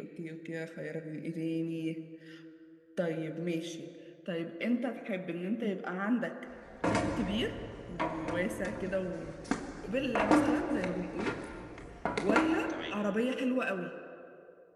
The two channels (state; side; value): identical; both; correlation 1.00